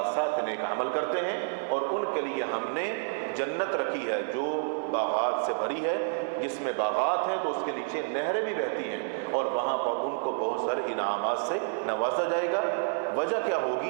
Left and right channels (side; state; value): left; silent; 58 dB below the other